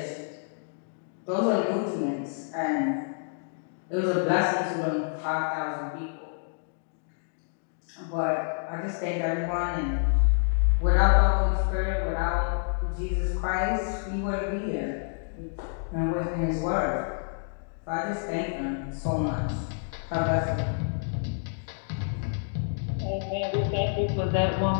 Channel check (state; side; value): silent; right; digital silence